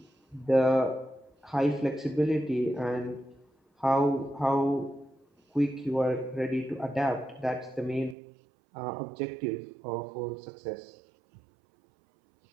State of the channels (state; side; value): drops out; left; at 8.2 s